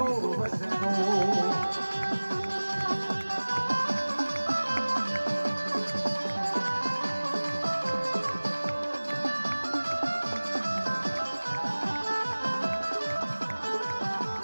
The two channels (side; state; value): both; inverted; correlation -1.00